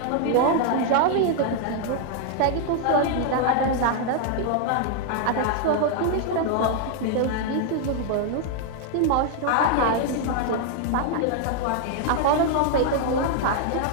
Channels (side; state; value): both; different; correlation 0.00